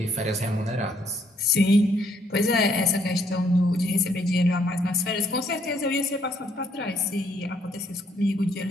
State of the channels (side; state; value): both; normal; correlation 0.69